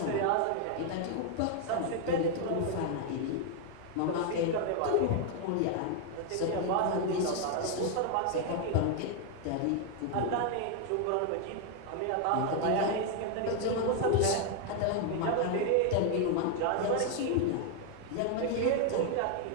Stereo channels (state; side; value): different; both; correlation 0.00